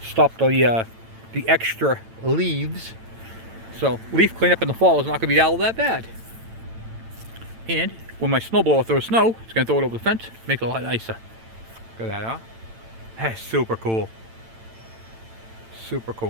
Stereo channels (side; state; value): left; late; 8.9 ms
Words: stop the extra leaves. So leaf cleanup in the fall is not going to be all that bad. And when my snowblower throws snow, it's going to throw it over the fence, make it a lot nicer. Look at that, huh? That's super cool. Super